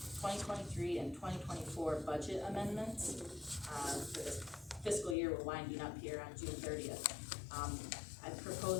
2023 and 2024 budget amendments. For this fiscal year, we're winding up here on June 30th. I'm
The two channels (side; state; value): right; drops out; at 5.2 s